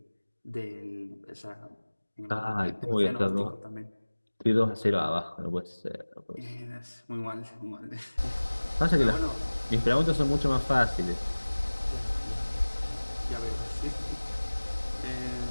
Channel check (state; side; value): inverted; both; correlation -1.00